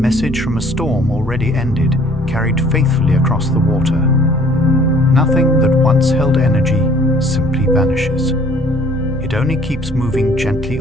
from a storm already ended, carried faithfully across the water. Nothing that once held energy simply vanishes. It only keeps moving gently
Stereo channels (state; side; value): normal; both; correlation 0.56